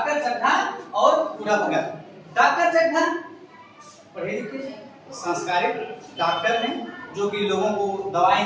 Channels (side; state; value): both; identical; correlation 1.00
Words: चड्ढा और बूढ़ा भगत। डॉक्टर चड्ढा पढ़े लिखे संस्कारित डॉक्टर हैं जो कि लोगों को दवाएं